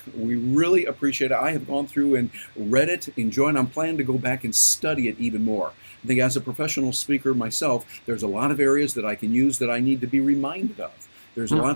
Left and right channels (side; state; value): both; inverted; correlation -1.00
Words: We really appreciate it. I have gone through and read it, enjoyed it. I'm planning to go back and study it even more. I think as a professional speaker myself, there's a lot of areas that I can use that I need to be reminded of. There's